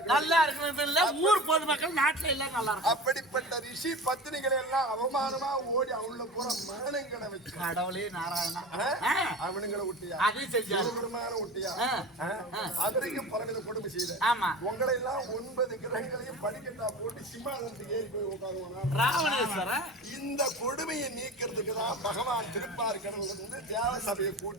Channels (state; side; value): normal; both; correlation 0.33